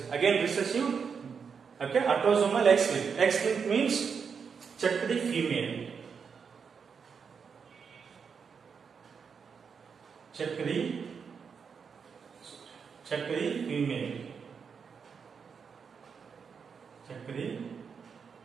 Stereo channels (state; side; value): quieter; left; 6.2 dB